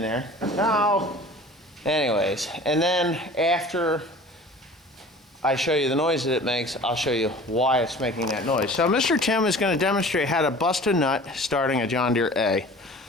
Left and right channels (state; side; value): normal; both; correlation 0.43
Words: Now, anyways, and then after I show you the noise that it makes, I'll show you why it's making that noise. So Mr. Tim is going to demonstrate how to bust a nut starting a John Deere A.